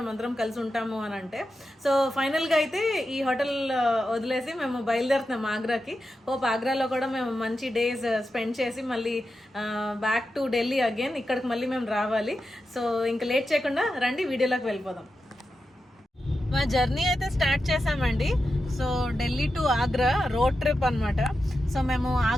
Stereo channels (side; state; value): both; normal; correlation 0.90